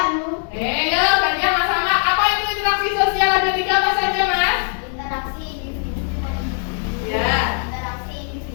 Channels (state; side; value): silent; right; 58 dB below the other